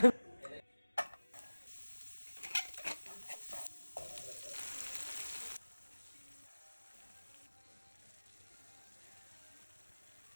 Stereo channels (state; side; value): inverted; both; correlation -1.00